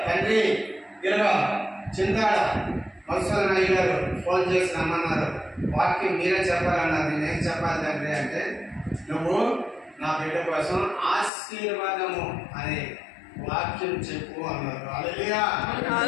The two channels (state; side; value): drops out; right; at 11.3 s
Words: తండ్రి ఇలాగా చింతాడ మధుసూదన్ అయ్య గారు ఫోన్ చేసి రమ్మన్నారు, వాక్యం మీరే చెప్పాలన్నారు. నేనేం చెప్పాలి తండ్రి అంటే, నువ్వు నా బిడ్డ కోసం ఆశీర్వాదము అనే వాక్యం చెప్పు అన్నారు.